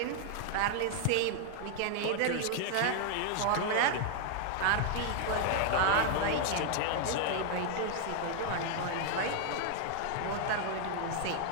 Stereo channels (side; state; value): both; different; correlation 0.00